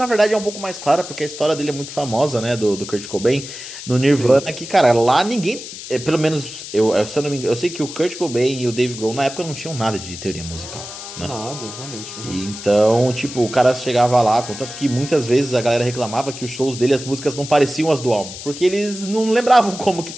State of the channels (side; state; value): left; noise; hiss, 11 dB below the sound